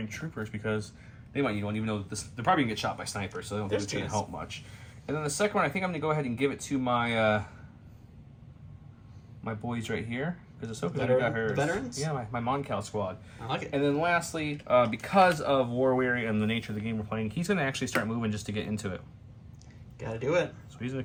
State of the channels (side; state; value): both; identical; correlation 1.00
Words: troopers because they might need one, even though they're probably going to get shot by snipers, so they don't think it's going to help much. And then the second one, I think I'm going to go ahead and give it to my my boys right here. Because Ahsoka's already got hers. Veterans? Yeah, my Moncal squad. I like it. And then lastly, because of War Weary and the nature of the game we're playing, he's going to actually start moving just to get into it. Gotta do it. So he's going